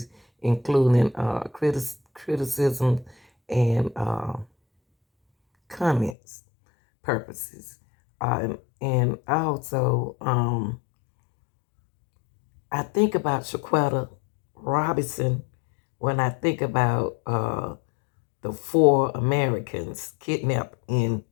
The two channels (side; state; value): right; drops out; at 6.2 s